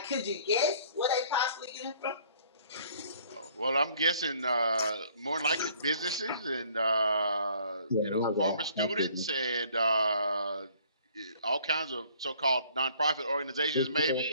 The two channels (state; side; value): inverted; both; correlation -0.58